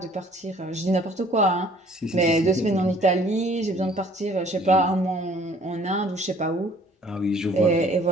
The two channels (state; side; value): normal; both; correlation 0.56